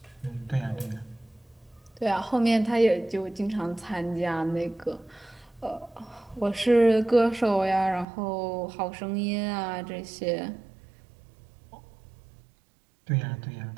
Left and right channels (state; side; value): drops out; left; at 8.1 s